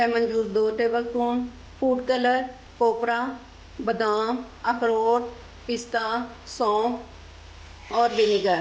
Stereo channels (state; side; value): identical; both; correlation 1.00